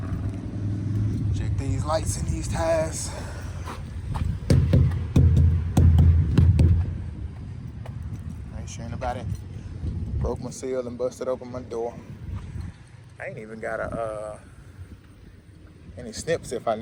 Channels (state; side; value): identical; both; correlation 1.00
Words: Check these lights and these tires. Make sure nobody broke my seal and busted open my door. I ain't even got any snips if I